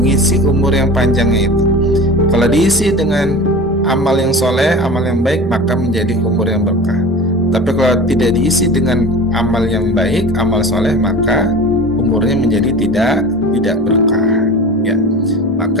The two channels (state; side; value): normal; both; correlation 0.36